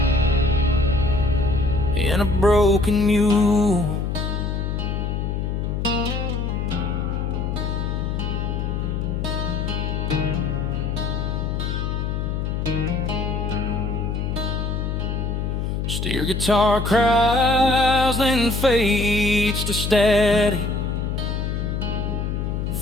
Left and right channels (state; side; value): noise; left; hum, 1 dB below the sound